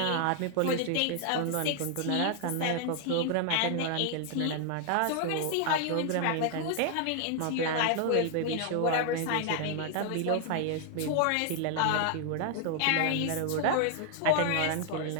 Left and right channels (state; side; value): different; both; correlation 0.00